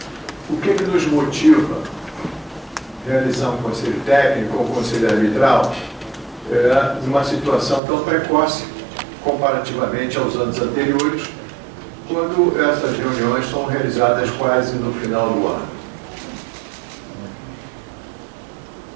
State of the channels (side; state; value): left; drops out; at 7.8 s